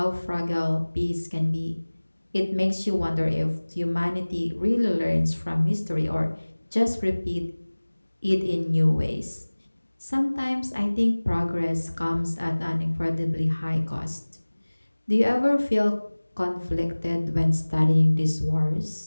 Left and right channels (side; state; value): both; inverted; correlation -1.00